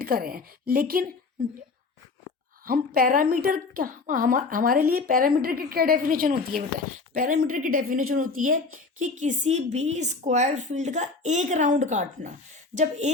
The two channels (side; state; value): right; quieter; 4.1 dB